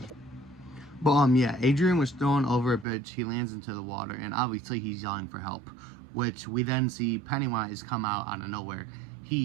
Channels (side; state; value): left; drops out; at 2.9 s